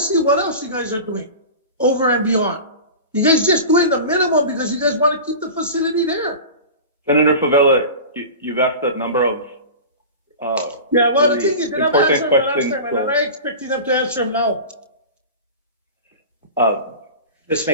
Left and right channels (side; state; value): both; inverted; correlation -0.33